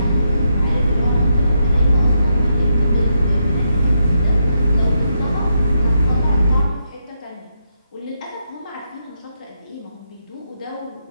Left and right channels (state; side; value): inverted; both; correlation -0.82